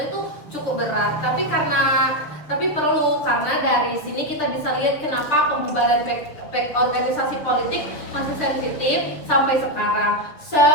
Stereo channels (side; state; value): right; late; 6.8 ms